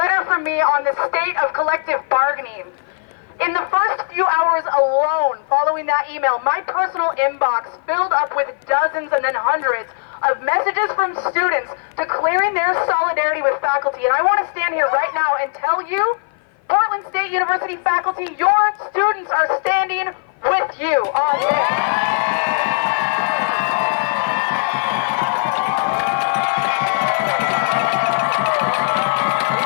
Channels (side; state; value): right; silent; 55 dB below the other